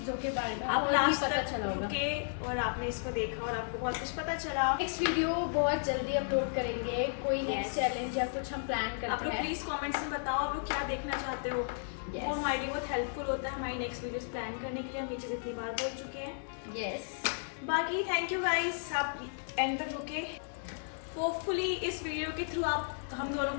के बारे में आप और भी लास्ट पता तक चला होगा। रुके और आपने इसको देखा और आपको बहुत कुछ पता चला। नेक्स्ट वीडियो बहुत जल्दी अपलोड करेंगे, कोई नेक्स्ट Yes. चैलेंज या कुछ हम प्लान आप करते लोग हैं। प्लीज कमेंट्स में बताओ आप लोग क्या देखना चाहते हो। Yes. वो हमारे लिए बहुत हेल्पफुल होता है हमारी नेक्स्ट वीडियोस प्लान करने के लिए। हम ये चीज़ इतनी बार बोल चुके हैं। यस बाकी थैंक यू गाइस, आप एंड तक रुके। होपफुली इस वीडियो के थ्रू आप हम दोनों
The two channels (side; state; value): right; silent; digital silence